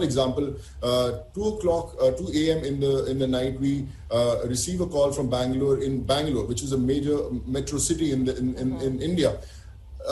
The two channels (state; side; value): identical; both; correlation 1.00